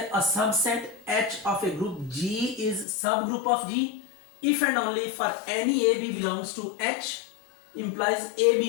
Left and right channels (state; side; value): drops out; right; at 2.9 s